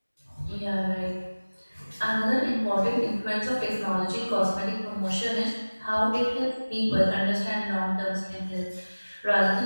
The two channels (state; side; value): inverted; both; correlation -1.00